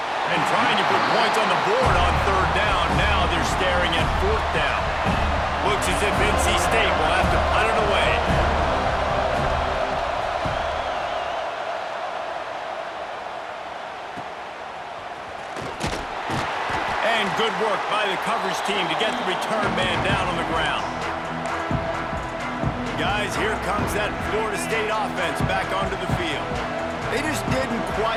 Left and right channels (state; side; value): identical; both; correlation 1.00